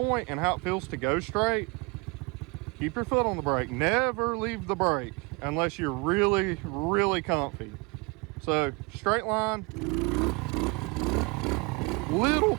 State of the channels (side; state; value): left; quieter; 28.0 dB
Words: and how it feels to go straight, keep your foot on the brake. Never leave the brake unless you're really, really comfy. So, straight line, little